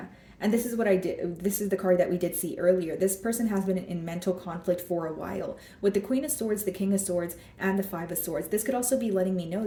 And this is what I did. This is the card that we did see earlier. This person has been in mental conflict for a while. With the Queen of Swords, the King of Swords, and the Five of Swords, this could also be letting me know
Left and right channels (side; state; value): both; identical; correlation 1.00